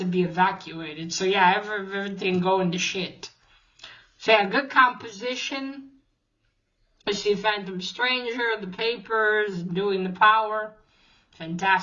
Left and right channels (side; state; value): both; identical; correlation 1.00